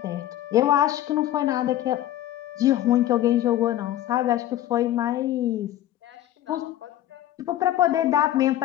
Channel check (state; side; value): quieter; right; 12.9 dB